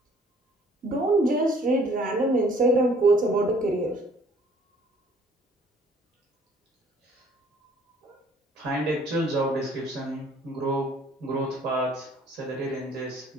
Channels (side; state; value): both; normal; correlation 0.58